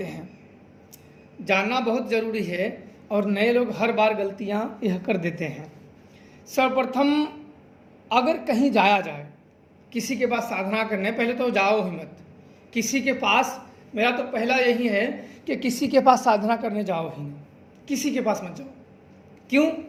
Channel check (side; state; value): both; identical; correlation 1.00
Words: हैं, जानना बहुत ज़रूरी है। और नए लोग हर बार गलतियां यह कर देते हैं। सर्वप्रथम अगर कहीं जाया जाए, किसी के पास साधना करने, पहले तो जाओ ही मत किसी के पास। मेरा तो पहला यही है कि किसी के पास साधना करने जाओ ही नहीं, किसी के पास मत जाओ। क्यों,